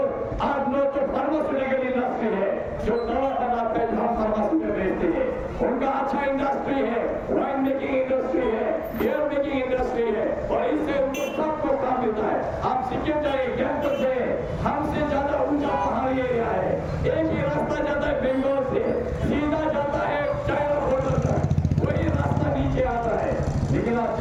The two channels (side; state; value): both; identical; correlation 1.00